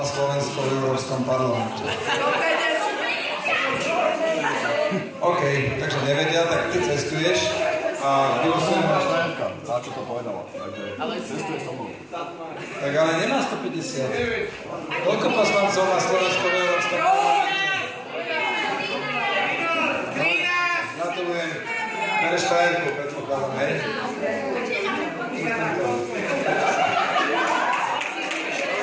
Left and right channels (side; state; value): both; identical; correlation 1.00